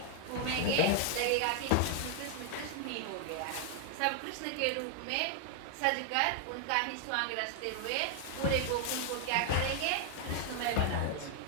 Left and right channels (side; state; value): both; different; correlation 0.00